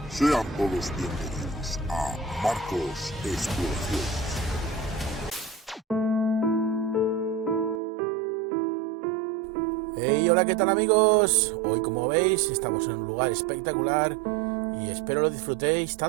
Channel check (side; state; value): left; drops out; at 7.8 s